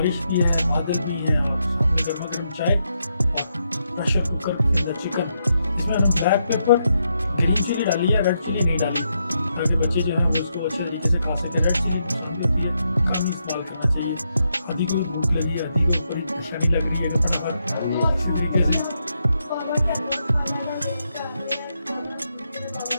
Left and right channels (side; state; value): both; inverted; correlation -0.81